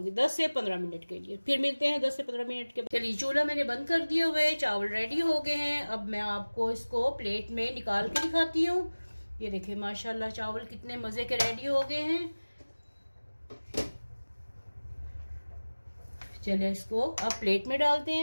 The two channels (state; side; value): inverted; both; correlation -1.00